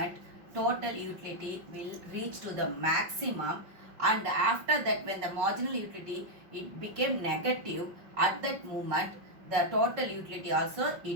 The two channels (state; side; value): late; left; 5.4 ms